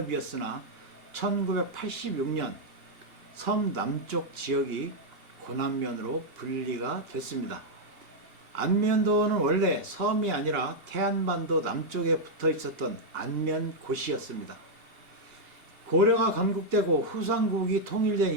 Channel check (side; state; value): left; late; 2.8 ms